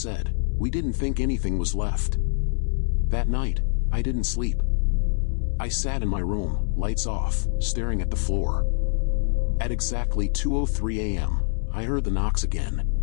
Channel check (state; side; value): silent; right; 62 dB below the other